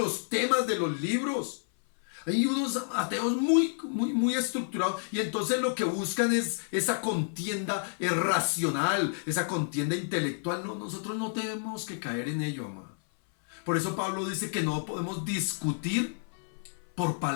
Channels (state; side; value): silent; right; 57 dB below the other